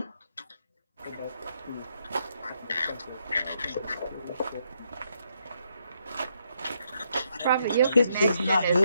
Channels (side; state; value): both; inverted; correlation -0.77